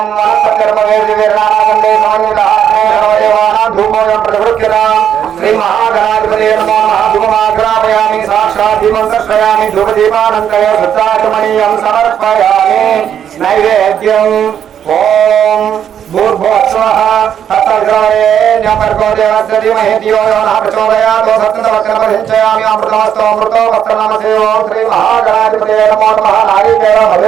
श्री महागणाधिपते नमो नमः। धूपमाग्रापयामि साक्षात् दीपं दर्शयामि धूपदीपानन्तरे शुद्धाचमनीयं समर्पयामि नैवेद्यम्। ओम भूर्भुवस्वः तत्सवितुर्वरेण्यं देवस्य धीमहि धियो यो नः प्रचोदयात्। सत्यवचनमभिषयामि अमृतमस्तु अमृतो वक्त्रनामसे। ओम श्री महागणाधिपते नमो नमः। नारिकेल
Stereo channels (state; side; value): quieter; left; 9.1 dB